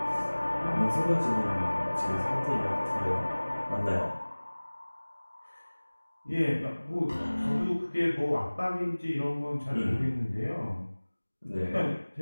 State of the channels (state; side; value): inverted; both; correlation -1.00